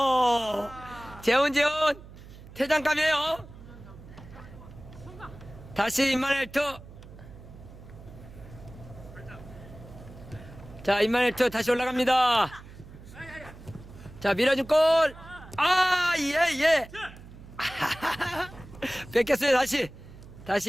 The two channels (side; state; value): right; noise; hum, 17 dB below the sound